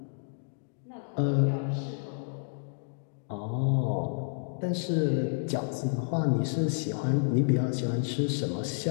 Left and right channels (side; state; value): right; silent; digital silence